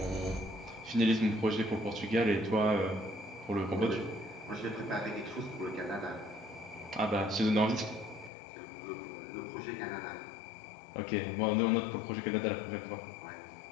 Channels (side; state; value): right; drops out; at 8.3 s